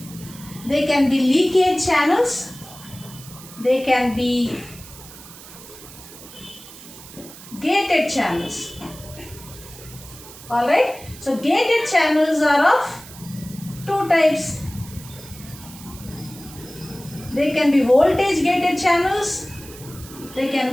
They can be leakage channels. They can be gated channels. Alright. So gated channels are of two types. They can be voltage gated channels. They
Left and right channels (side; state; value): right; noise; hiss, 17 dB below the sound